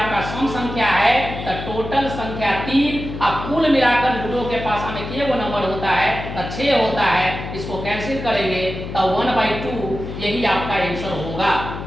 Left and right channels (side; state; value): left; noise; hum, 8 dB below the sound